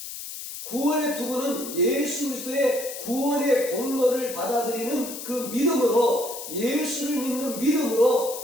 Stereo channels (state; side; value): noise; left; hiss, 9 dB below the sound